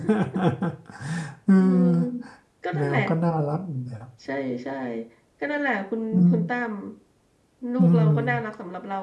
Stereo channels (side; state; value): both; identical; correlation 1.00